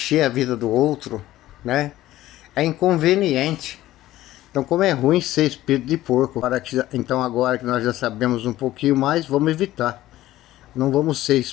a vida do outro, né? É inconveniente. Então, como é ruim ser espírito de porco, então agora que nós já sabemos um pouquinho mais, vamos evitar. Não vamos ser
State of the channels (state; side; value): quieter; right; 15.1 dB